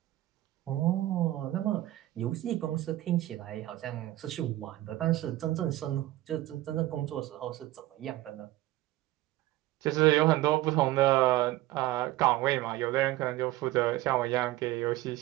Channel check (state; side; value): quieter; left; 16.3 dB